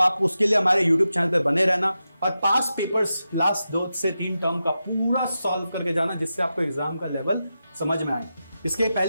उसके लिए हमारे यूट्यूब चैनल पे बने रहना और पास पेपर्स लास्ट 2 से 3 टर्म का पूरा सॉल्व करके जाना, जिससे आपको एग्जाम का लेवल समझ में आए। इसके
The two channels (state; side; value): inverted; both; correlation -0.90